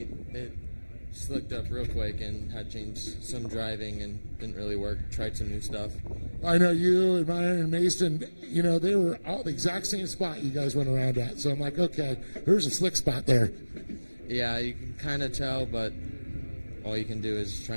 It slicked up real quick and had changed some driving and didn't really work. Tried some new stuff. I know you and Meyer and Mason, you know, they were all the exact same spot you guys went around at. So I'm like, okay, there's a slick spot there. Yeah, you can kind of tell, but all you can do is try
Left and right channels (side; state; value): both; inverted; correlation -1.00